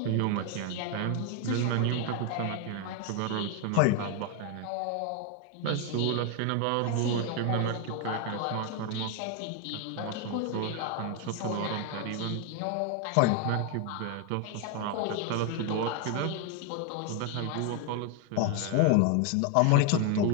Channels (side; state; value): both; different; correlation 0.01